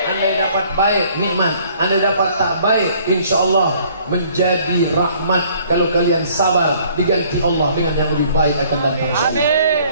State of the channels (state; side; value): inverted; both; correlation -0.58